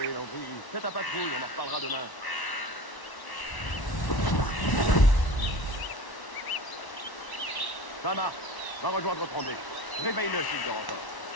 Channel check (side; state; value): right; late; 1.1 ms